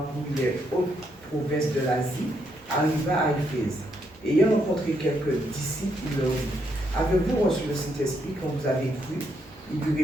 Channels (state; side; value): normal; both; correlation 0.76